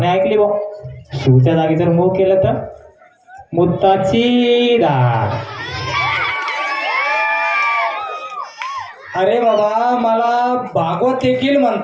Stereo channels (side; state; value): both; identical; correlation 1.00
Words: ऐकली बा. सूच्या जागी जर मूग केलं तर मुत्ताची धार. अरे बाबा मला भागवत देखील